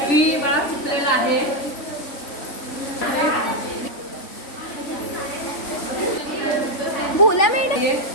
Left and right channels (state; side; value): late; right; 3.4 ms